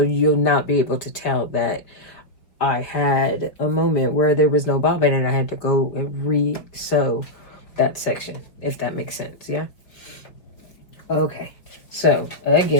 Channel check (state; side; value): late; right; 4.7 ms